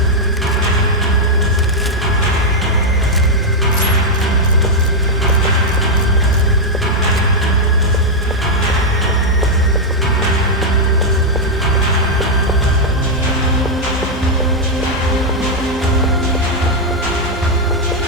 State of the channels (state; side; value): normal; both; correlation -0.02